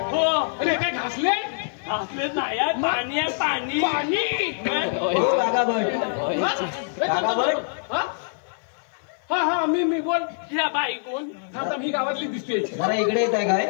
हो. अरे काय घासले? घासले नाही पाणी आहे पाणी पाणी. हा मी बोल. ह्या बाई कोण? आता मी गावातली दिसते. जरा इकडे येत आहे काय?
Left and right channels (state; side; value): silent; right; 62 dB below the other